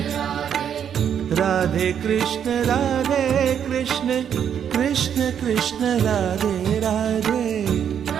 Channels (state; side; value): quieter; left; 8.6 dB